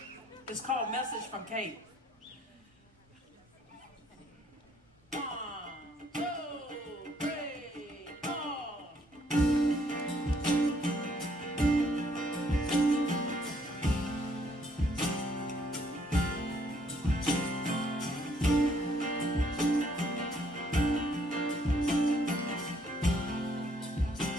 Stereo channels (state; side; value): normal; both; correlation 0.67